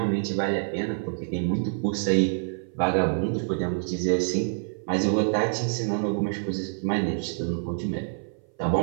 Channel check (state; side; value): silent; left; 57 dB below the other